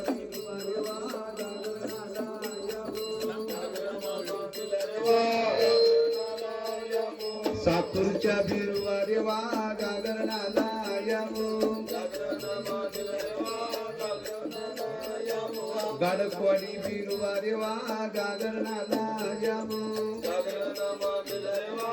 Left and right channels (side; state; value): both; identical; correlation 1.00